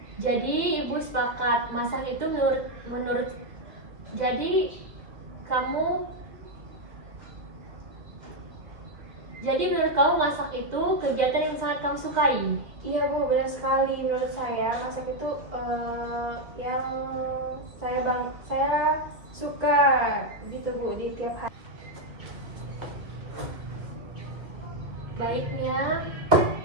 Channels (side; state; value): left; late; 2.2 ms